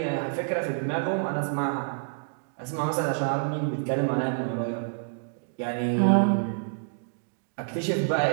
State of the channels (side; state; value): left; silent; digital silence